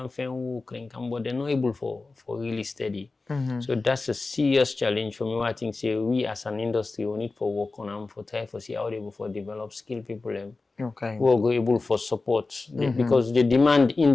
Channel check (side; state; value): right; quieter; 3.7 dB